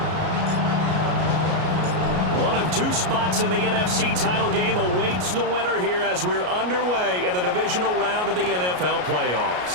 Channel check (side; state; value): left; late; 33 ms